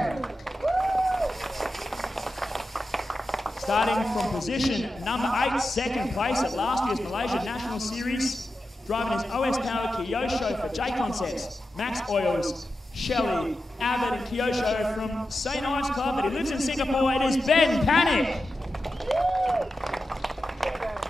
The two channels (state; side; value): normal; both; correlation 0.91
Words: Starting from position number 8, second place at last year's Malaysia National Series, driving his OS-powered Kyosho for J Concepts, Max Oils, Shelley, Abbott and Kyosho from St. Ives Club, but he lives in Singapore, it is Ben Panic.